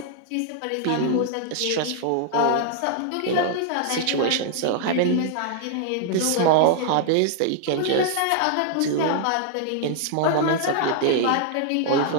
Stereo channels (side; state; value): both; different; correlation -0.01